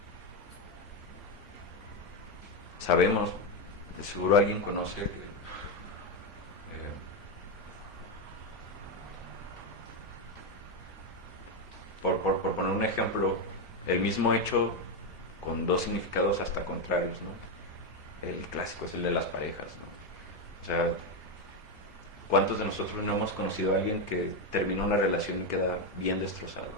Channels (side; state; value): both; normal; correlation 0.08